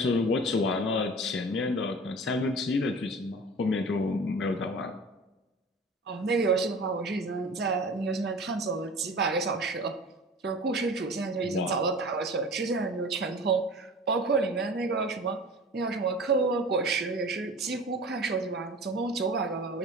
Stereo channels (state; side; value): normal; both; correlation 0.39